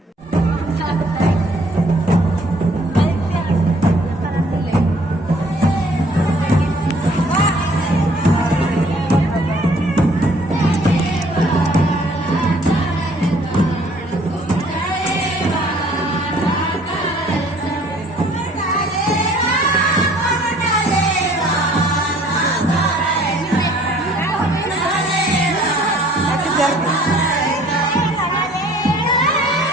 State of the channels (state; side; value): normal; both; correlation 0.58